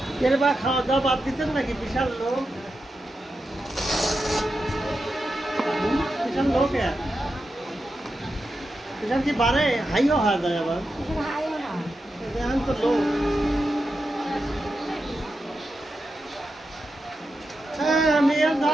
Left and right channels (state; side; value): normal; both; correlation 0.89